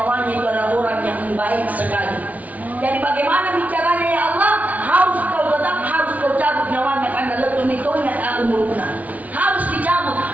itu adalah orang yang baik sekali. Jadi bagaimana bicaranya ya Allah? Harus kau cabut nyawanya karena lepuh mitonya umuruna. Harus dicabut.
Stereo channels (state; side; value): late; left; 0.072 ms